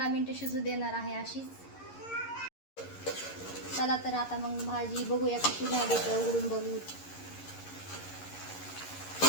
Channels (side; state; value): right; late; 11 ms